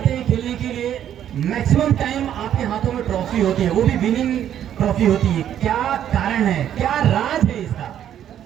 हैं खेलने के लिए मैक्सिमम टाइम आपके हाथों में ट्रॉफी होती है, वो भी विनिंग ट्रॉफी होती है। क्या कारण है, क्या राज है इसका?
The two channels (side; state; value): left; quieter; 10.4 dB